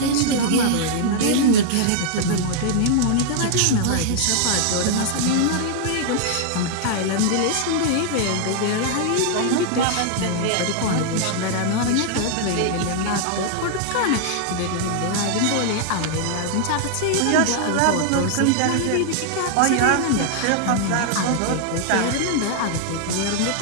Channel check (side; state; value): both; different; correlation -0.01